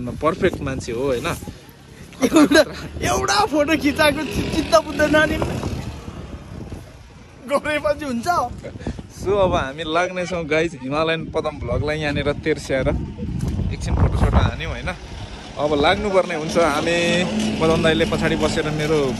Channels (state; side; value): identical; both; correlation 1.00